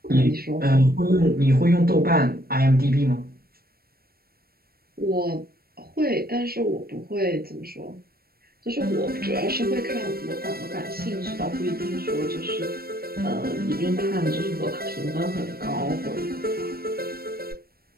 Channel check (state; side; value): late; left; 0.44 ms